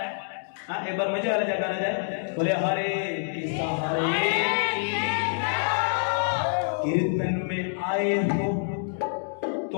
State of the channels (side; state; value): right; silent; digital silence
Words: हाँ एक बार मजे वाला जयकारा जाए, बोले हरे कृष्णा हरे। कीर्तन में आए हो